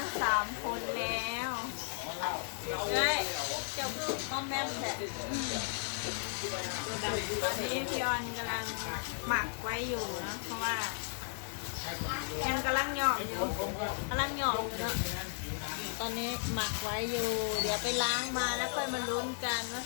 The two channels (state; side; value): silent; right; digital silence